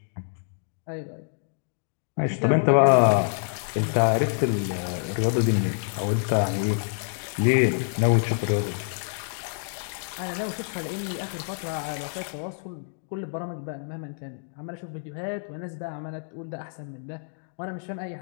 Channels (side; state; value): right; silent; digital silence